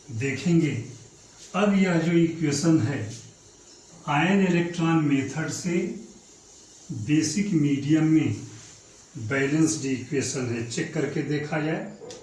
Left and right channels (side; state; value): both; identical; correlation 1.00